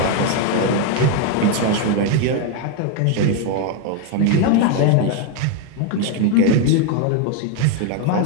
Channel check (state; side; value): different; both; correlation 0.02